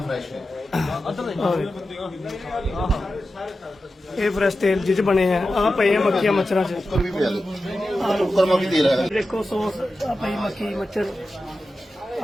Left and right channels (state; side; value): normal; both; correlation 0.92